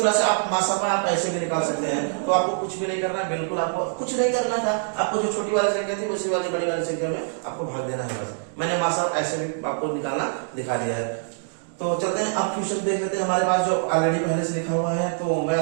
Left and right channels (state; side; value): silent; left; digital silence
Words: से आप मासापा आप ऐसे भी निकाल सकते हैं। तो आपको कुछ भी नहीं करना है, बिल्कुल आपको कुछ नहीं करना था, आपको जो छोटी वाली संख्या थी उसी वाली बड़ी वाली संख्या में आपको भाग देना है बस। मैंने मासापा ऐसे भी आपको निकालना दिखा दिया है। तो चलते हैं अब क्वेश्चन देख लेते हैं, हमारे पास जो ऑलरेडी पहले से लिखा हुआ है, तो मैं